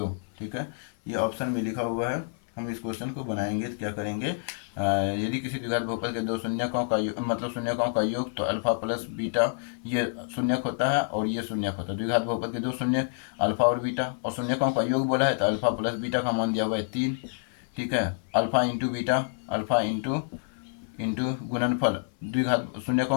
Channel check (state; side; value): silent; right; 59 dB below the other